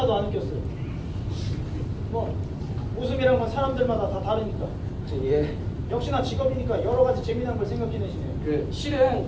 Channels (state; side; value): identical; both; correlation 1.00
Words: 안 웃겼어요. 뭐 웃음이란 건 사람들마다 다 다르니까. 예. 역시나 직업이니까 여러 가지 재미난 걸 생각해내시네요. 실은